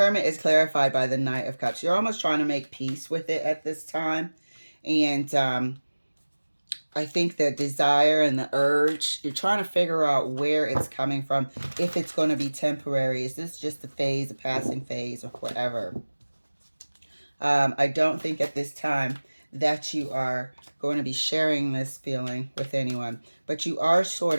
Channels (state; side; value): inverted; both; correlation -1.00